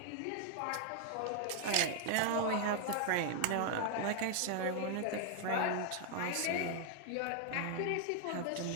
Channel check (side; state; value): both; different; correlation 0.00